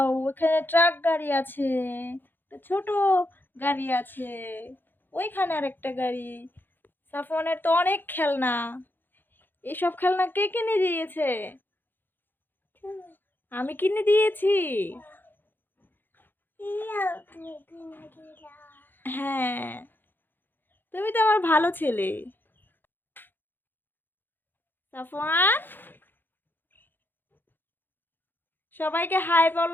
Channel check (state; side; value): late; right; 0.096 ms